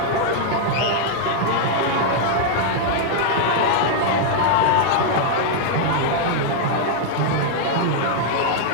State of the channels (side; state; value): both; different; correlation -0.01